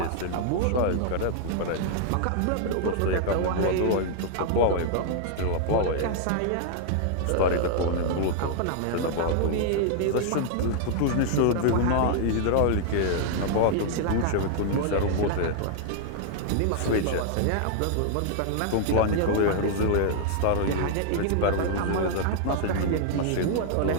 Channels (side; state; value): both; different; correlation -0.01